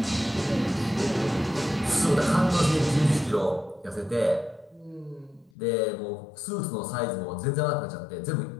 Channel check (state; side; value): drops out; right; at 5.5 s